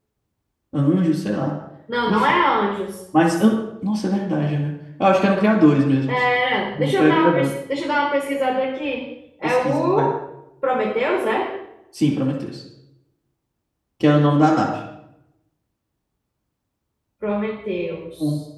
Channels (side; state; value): both; identical; correlation 1.00